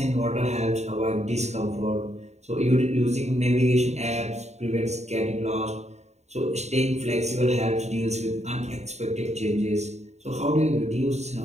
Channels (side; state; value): left; late; 0.32 ms